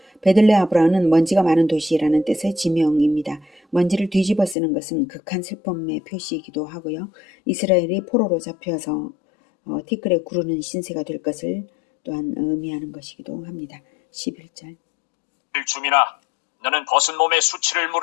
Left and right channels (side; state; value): right; drops out; at 4.5 s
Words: 베들레아브라는 먼지가 많은 도시라는 뜻의 지명입니다. 먼지를 뒤집어 쓰는 것은 극한 슬픔의 표시이기도 하고요. 이스라엘이 포로로 잡혀서 티끌에 구르는 신세가 될 것을 또한 의미하는 것이기도 합니다. 11절 주민아, 너는 벗은 몸에 수치를